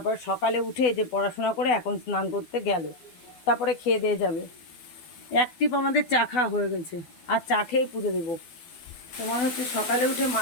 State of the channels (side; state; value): right; late; 12 ms